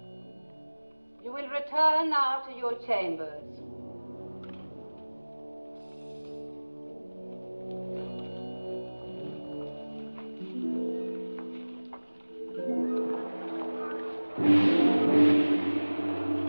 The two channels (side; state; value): both; inverted; correlation -1.00